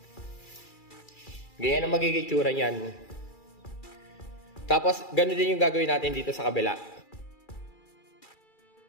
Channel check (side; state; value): right; late; 2.3 ms